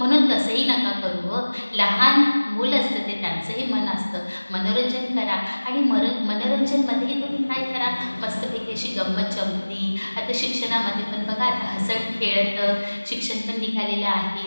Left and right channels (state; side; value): inverted; both; correlation -1.00